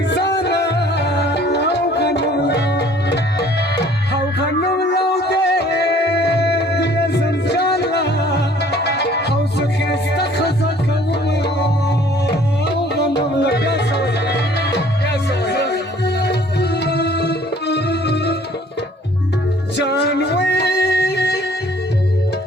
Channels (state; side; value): normal; both; correlation 0.56